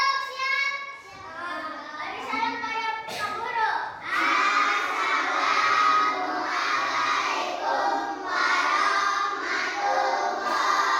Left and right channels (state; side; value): identical; both; correlation 1.00